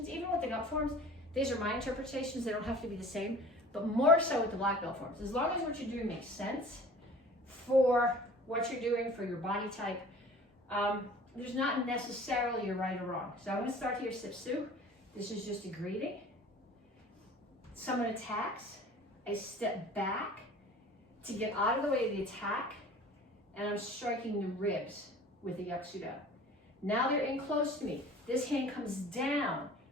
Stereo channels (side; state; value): both; normal; correlation 0.45